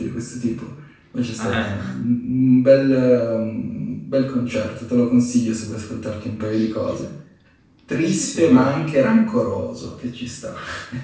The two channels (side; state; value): both; identical; correlation 1.00